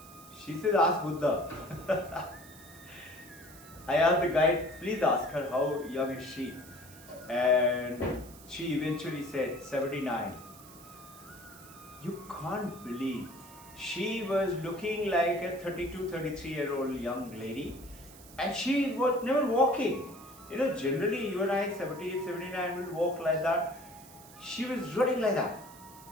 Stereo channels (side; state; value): right; noise; hiss, 20 dB below the sound